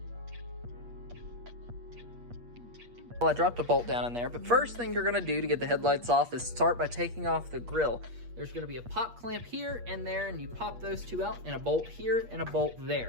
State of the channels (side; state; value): left; late; 8.4 ms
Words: Well, I dropped a bolt down in there, but first thing you're going to do to get the headlights off is start by taking off the grill. There's going to be a pop clamp here and there, and you pop those two out, and a bolt here and a bolt